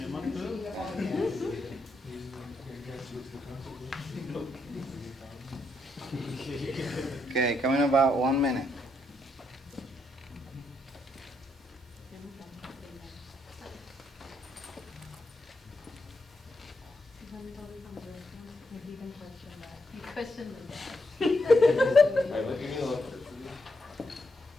Okay, coming in about 1 minute. Question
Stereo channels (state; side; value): normal; both; correlation 0.79